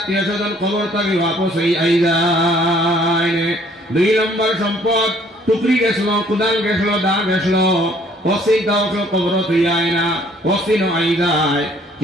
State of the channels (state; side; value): normal; both; correlation 0.60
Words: স্বজন কবর থেকে वापस আই যায় দুই নম্বর সম্পদ টুকরি গেছিল কুদাল গেছিল দা গেছিল ওসি দাও কবর তুই আয় না ওসি ন আই যায়